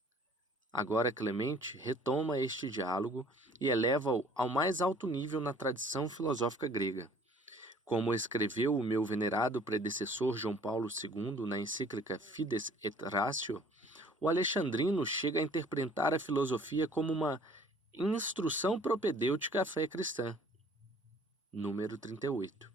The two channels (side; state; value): both; normal; correlation 0.54